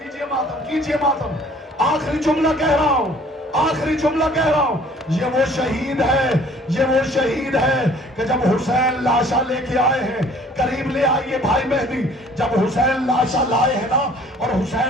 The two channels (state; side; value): normal; both; correlation 0.54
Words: मातम, कीजिए मातम। आखिरी जुमला कह रहा हूं, आखिरी जुमला कह रहा हूं, ये वो शहीद है, ये वो शहीद है कि जब हुसैन लाशा लेके आए हैं, करीब ले आइए भाई मेहदी, जब हुसैन लाशा लाए हैं ना और